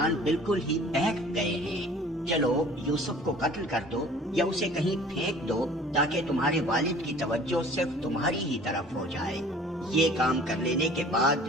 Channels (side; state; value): both; normal; correlation 0.49